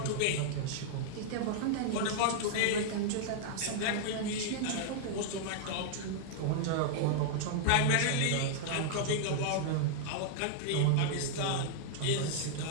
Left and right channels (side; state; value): both; different; correlation -0.01